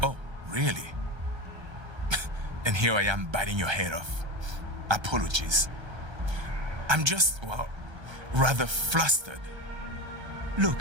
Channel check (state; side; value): late; left; 1.3 ms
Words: Oh, really? And here I am biting your head off. Apologies. I'm just, well, rather flustered.